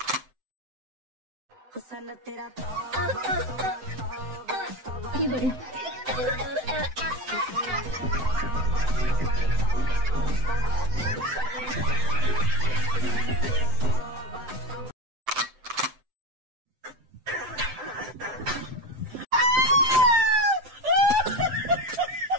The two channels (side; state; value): left; late; 7.8 ms